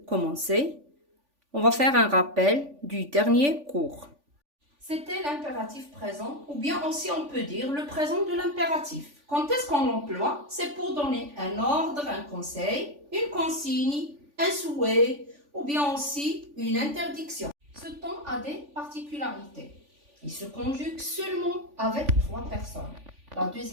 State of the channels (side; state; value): left; late; 3.5 ms